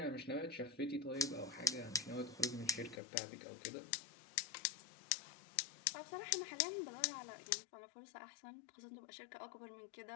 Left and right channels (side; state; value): right; drops out; at 3.0 s